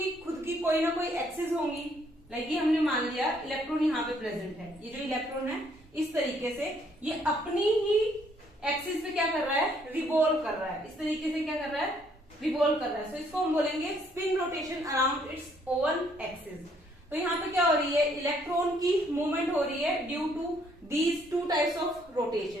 खुद की कोई ना कोई एक्सिस होंगी। लाइक ये हमने मान लिया इलेक्ट्रॉन यहाँ पे प्रेजेंट है। ये जो इलेक्ट्रॉन है इस तरीके से ये अपनी ही एक्सिस पे क्या कर रहा है? रिवॉल्व कर रहा है। इस तरीके से क्या कर रहा है? रिवॉल्व कर रहा है। सो इसको हम बोलेंगे spin rotation around its own axis. तो यहाँ पे क्या हो रही है? इलेक्ट्रॉन की मूवमेंट हो रही है due to these two types of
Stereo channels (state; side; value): normal; both; correlation 0.67